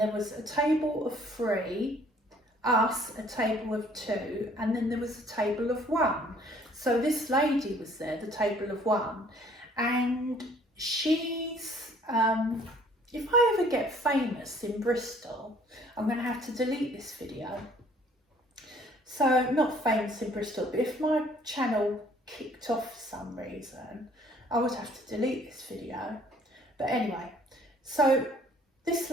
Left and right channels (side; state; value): both; normal; correlation 0.58